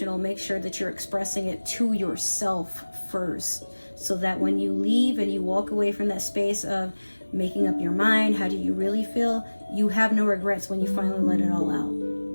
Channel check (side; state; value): both; inverted; correlation -1.00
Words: make sure that you're expressing it to yourself first, so that when you leave and you walk away from that space of making up your mind. How do you really feel? You have no regrets when you finally let it all out.